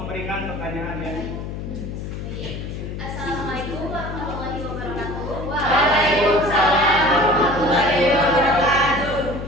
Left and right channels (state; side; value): noise; left; hum, 7 dB below the sound